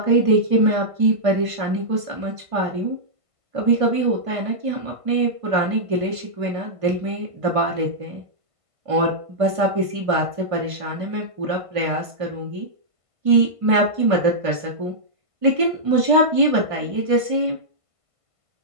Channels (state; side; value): late; left; 1.5 ms